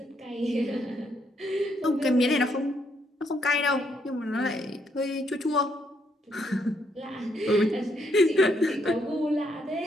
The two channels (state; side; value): normal; both; correlation 0.74